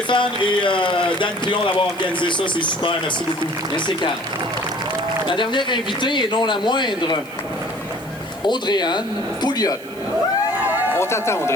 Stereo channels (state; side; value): noise; right; hiss, 22 dB below the sound